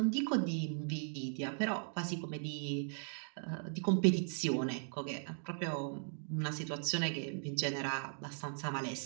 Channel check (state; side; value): silent; left; digital silence